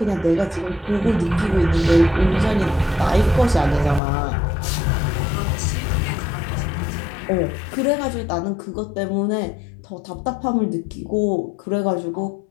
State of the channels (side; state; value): right; drops out; at 4.0 s